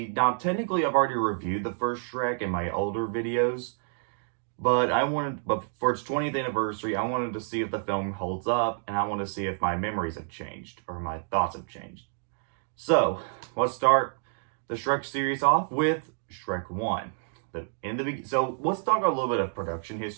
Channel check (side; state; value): left; silent; digital silence